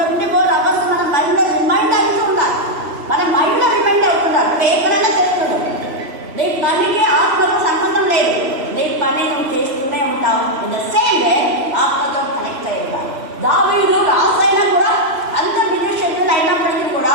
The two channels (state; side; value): late; left; 3.0 ms